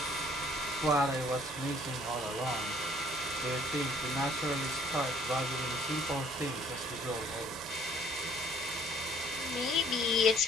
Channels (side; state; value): both; normal; correlation 0.58